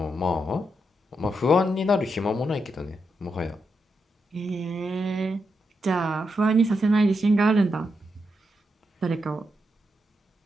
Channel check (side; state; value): both; normal; correlation 0.84